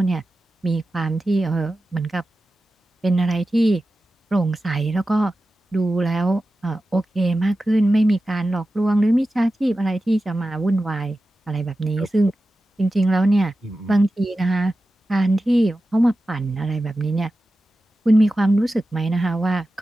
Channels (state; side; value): normal; both; correlation 0.93